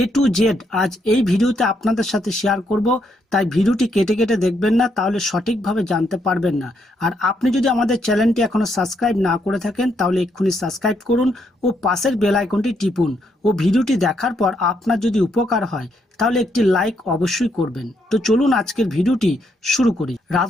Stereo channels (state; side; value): normal; both; correlation 0.76